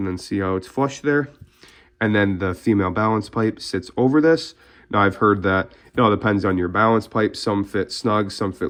then see how it's flush there. And then the female balance pipe sits over this. Now I've heard that it all depends on your balance pipe. Some fit snug, some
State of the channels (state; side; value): identical; both; correlation 1.00